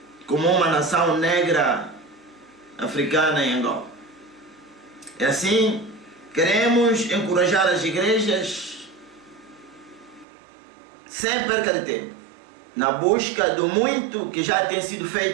como uma nação negra africana em Angola. E assim, queremos encorajar as igrejas sem perca de tempo, na busca do muito que já tem sido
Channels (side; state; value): left; drops out; at 10.2 s